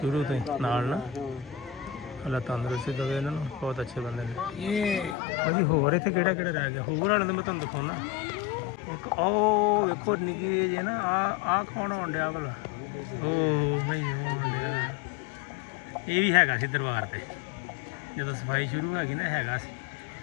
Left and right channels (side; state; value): right; drops out; at 5.2 s